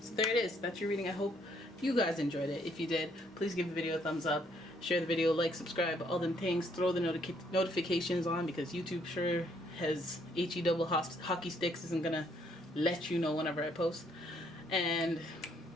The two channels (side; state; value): both; normal; correlation 0.68